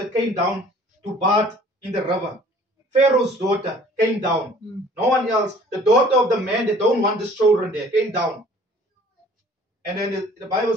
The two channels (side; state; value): both; normal; correlation 0.52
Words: came down to bathe in the river. Pharaoh's daughter came down. No one else. The daughter of the man that don't want his children there came down. And then the Bible